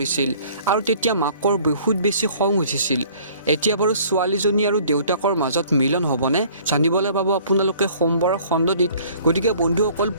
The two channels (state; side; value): inverted; both; correlation -0.53